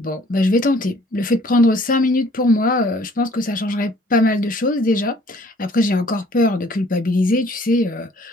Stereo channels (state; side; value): normal; both; correlation 0.57